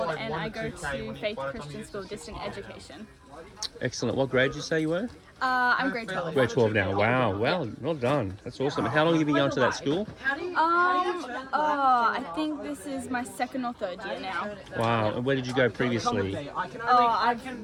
and I go to Faith Christian School, Distant Education. Excellent. What grade did you say you were? I'm grade 12. Grade 12 now. Wow. Well done. That's awesome. How long have you been going to that school? I think this is my second or third year now. Wow. And where did you go previously? I've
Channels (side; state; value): both; identical; correlation 1.00